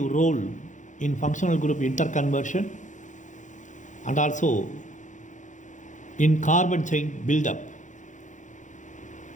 role in functional group interconversion and also in carbon chain buildup.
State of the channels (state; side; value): late; right; 0.36 ms